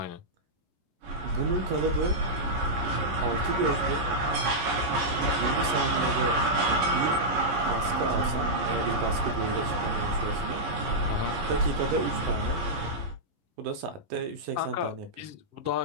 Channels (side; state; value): left; late; 11 ms